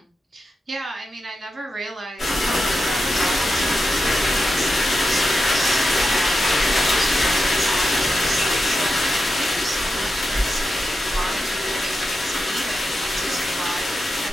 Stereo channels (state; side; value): normal; both; correlation 0.89